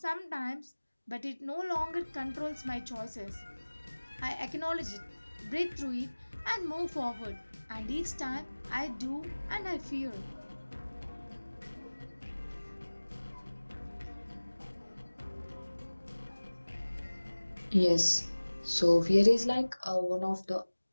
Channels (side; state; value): both; inverted; correlation -1.00